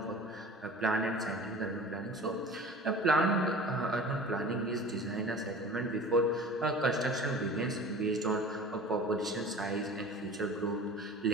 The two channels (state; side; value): normal; both; correlation 0.41